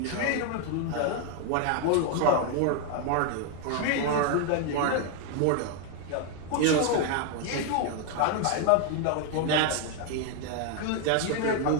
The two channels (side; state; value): both; different; correlation 0.00